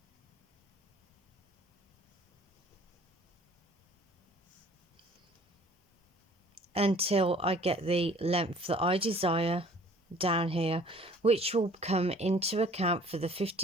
Until I get the length that I desire down here, which will come into account for the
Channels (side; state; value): both; normal; correlation 0.52